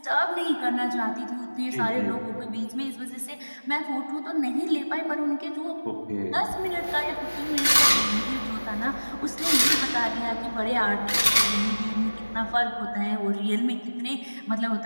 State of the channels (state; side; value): inverted; both; correlation -1.00